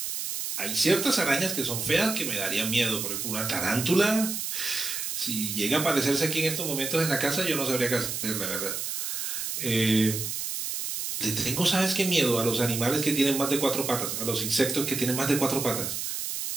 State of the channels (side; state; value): right; noise; hiss, 3 dB below the sound